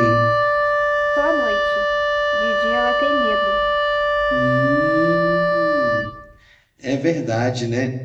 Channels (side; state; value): both; identical; correlation 1.00